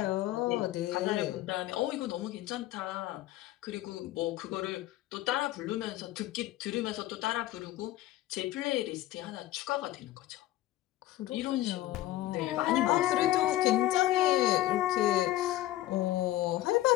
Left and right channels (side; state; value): right; quieter; 15.2 dB